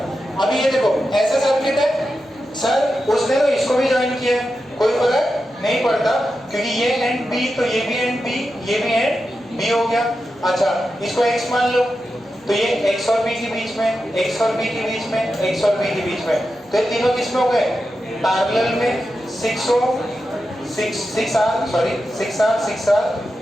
अभी ये देखो ऐसा सर्किट है सर, उसने तो इसको भी ज्वाइन किया है, कोई फर्क नहीं पड़ता क्योंकि ये एंड बी, तो ये भी एंड बी, ये भी एंड बी हो गया। अच्छा इसको x मान लो, तो ये x और b के बीच में, x और b के बीच में, x और b के बीच में, तो ये तीनों किस में हो गए? पैरेलल में। 6R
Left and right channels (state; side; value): noise; left; hum, 30 dB below the sound